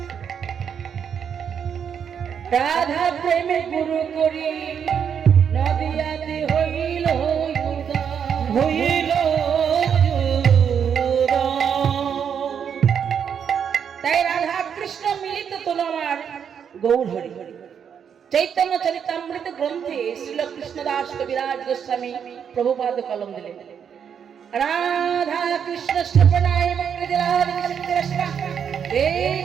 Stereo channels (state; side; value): quieter; left; 7.7 dB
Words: রাধা প্রেমে গুরু করি, নদিয়াতে হইল হইল। তাই রাধা কৃষ্ণ মিলিত তোল আমার গৌর হরি। চৈতন্য চরিতামৃত গ্রন্থে শ্রীল কৃষ্ণদাস কবিরাজ গোস্বামী প্রভুপাদ কলম দিলেন, রাধা কৃষ্ণ শ্রবণায়